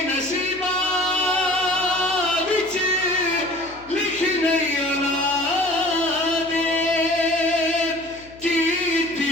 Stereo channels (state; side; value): noise; left; hum, 24 dB below the sound